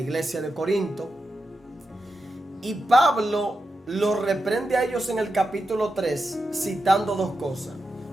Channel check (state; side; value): normal; both; correlation 0.88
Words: de Corinto y Pablo lo reprende a ellos en el capítulo 3 citando dos cosas.